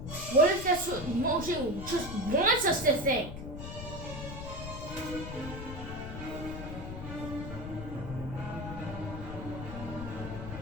What if that's what Mojang just wants us to think?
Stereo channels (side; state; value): left; noise; rumble, 8 dB below the sound